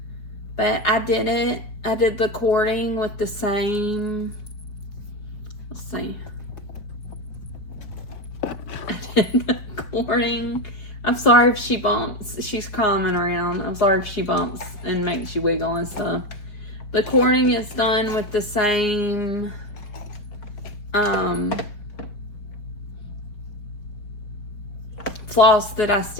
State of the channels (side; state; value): right; late; 5.0 ms